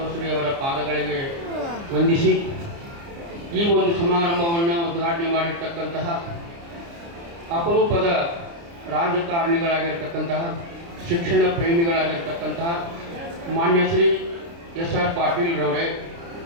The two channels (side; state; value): left; late; 29 ms